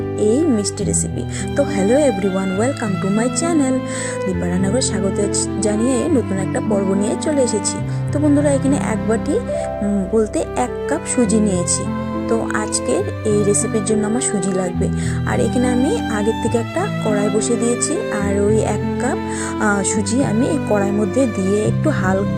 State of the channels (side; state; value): both; identical; correlation 1.00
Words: এই মিষ্টি রেসিপি। তো hello everyone, welcome to my channel. Dipa রান্নাঘরে স্বাগত জানিয়ে নতুন একটা পর্ব নিয়ে চলে এসেছি। তো বন্ধুরা, এখানে এক বাটি বলতে 1 কাপ সুজি নিয়েছি। তো আজকের এই রেসিপির জন্য আমার সুজি লাগবে। আর এখানে আমি আগের থেকে একটা কড়াই বসিয়ে দিয়েছি, আর ওই 1 কাপ সুজি আমি এই কড়াইয়ের মধ্যে দিয়ে একটু